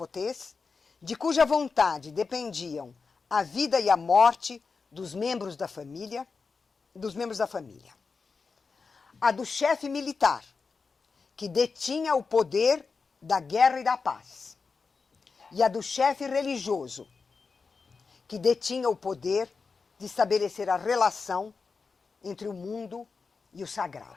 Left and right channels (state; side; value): quieter; right; 4.8 dB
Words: de cuja vontade dependiam a vida e a morte dos membros da família, A do chefe militar, que detinha o poder da guerra e da paz. E a do chefe religioso, que detinha o poder de estabelecer a relação entre o mundo e o